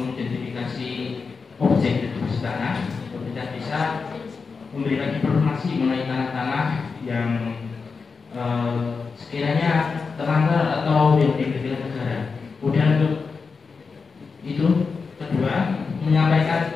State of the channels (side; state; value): right; quieter; 4.9 dB